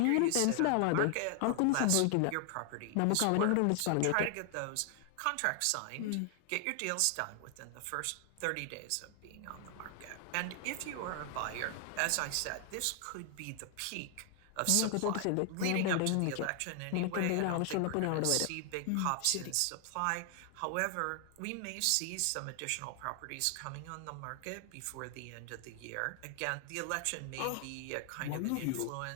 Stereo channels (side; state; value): both; different; correlation 0.00